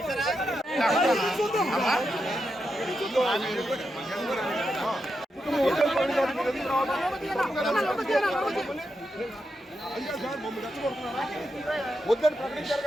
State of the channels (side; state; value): both; normal; correlation 0.86